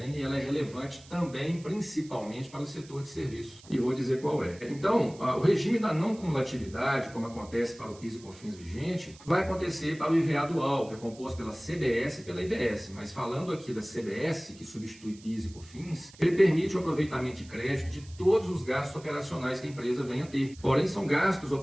e ela é relevante também, principalmente para o setor de serviços. E vou dizer qual é. Então, o regime da não cumulatividade, como acontece para o PIS e COFINS vigente, vai acontecer para o IVA dual, que é composto pela CBS e pela IBS. Mas falando aqui da CBS, que substitui PIS e COFINS, ele permite o aproveitamento de crédito de todos os gastos operacionais que a empresa venha a ter. Porém, são gastos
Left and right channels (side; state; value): right; noise; hiss, 22 dB below the sound